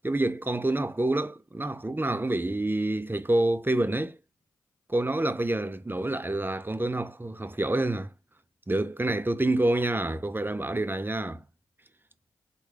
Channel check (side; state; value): both; normal; correlation 0.90